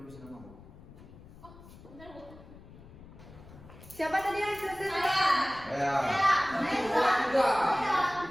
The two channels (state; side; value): noise; left; rumble, 19 dB below the sound